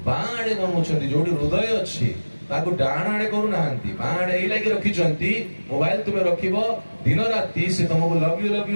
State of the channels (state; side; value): inverted; both; correlation -1.00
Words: बाड़े बनउछंती जोडी हृदय अछि ताको डाण आड़े करू नाहंती, बाड़े एई लागि रखिचंती। मोबाइल तुमे रखिबो दिन राती से तुमको लव